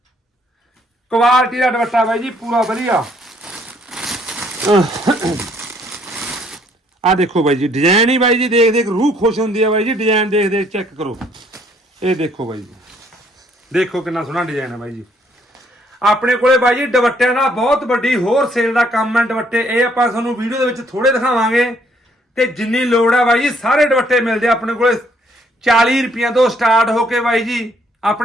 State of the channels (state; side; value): normal; both; correlation 0.66